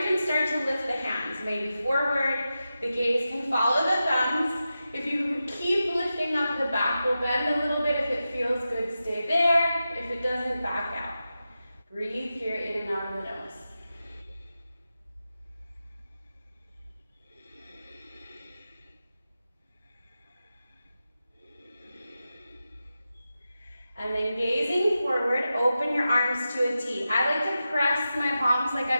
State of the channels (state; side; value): inverted; both; correlation -0.92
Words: can start to lift the hands, maybe forward. The gaze can follow the thumbs. If you keep lifting up the back, we'll bend a little bit. If it feels good, stay there. If it doesn't, back out. Breathe here, in and out of the nose. And then gazing forward, open your arms to a T. I like to press my palms like